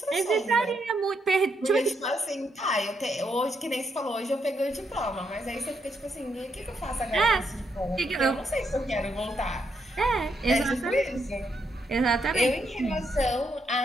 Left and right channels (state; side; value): normal; both; correlation 0.78